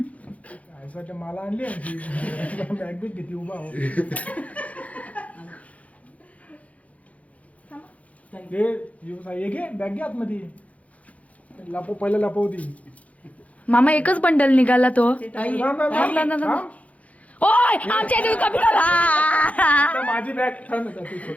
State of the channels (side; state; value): right; late; 0.067 ms